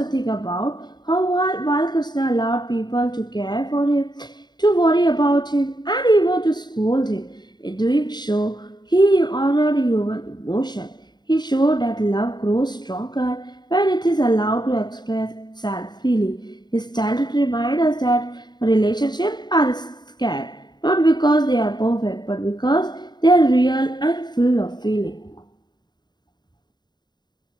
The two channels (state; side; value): late; right; 0.21 ms